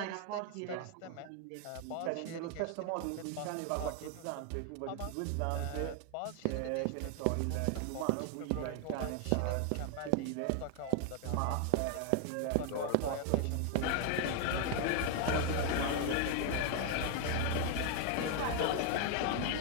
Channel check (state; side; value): different; both; correlation 0.01